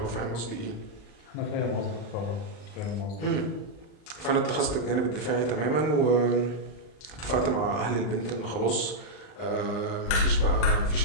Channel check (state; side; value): late; right; 39 ms